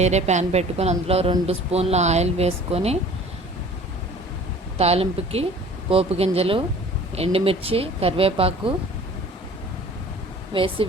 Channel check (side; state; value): both; normal; correlation 0.47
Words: ప్యాన్ పెట్టుకొని అందులో 2 స్పూన్ల ఆయిల్ వేసుకొని తాలింపుకి పోపు గింజలు, ఎండుమిర్చి, కరివేపాకు వేసి